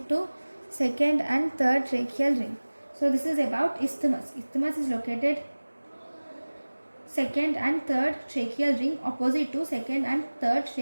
to second and third tracheal ring. So this is about isthmus. Isthmus is located second and third tracheal ring, opposite to second and third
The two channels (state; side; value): inverted; both; correlation -1.00